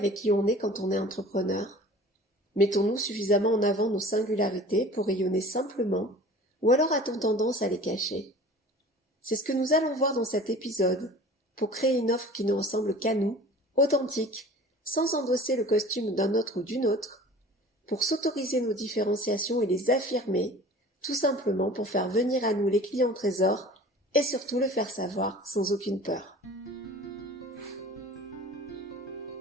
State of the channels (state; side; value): normal; both; correlation 0.43